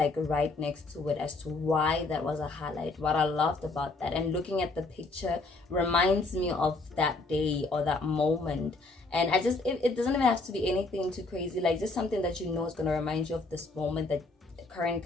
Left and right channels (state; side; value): quieter; right; 3.4 dB